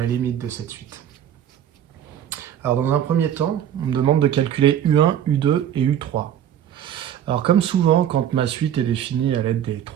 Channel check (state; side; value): quieter; left; 10.2 dB